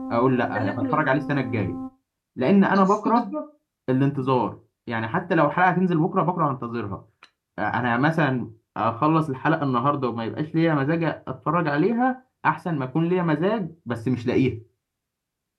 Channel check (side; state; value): both; identical; correlation 1.00